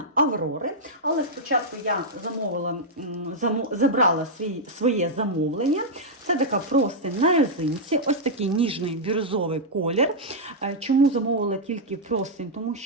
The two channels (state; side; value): normal; both; correlation -0.06